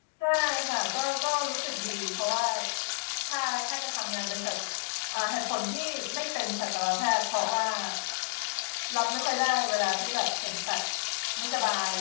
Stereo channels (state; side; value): quieter; right; 30.3 dB